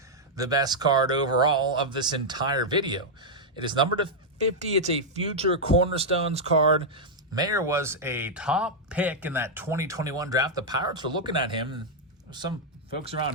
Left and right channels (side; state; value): both; normal; correlation -0.03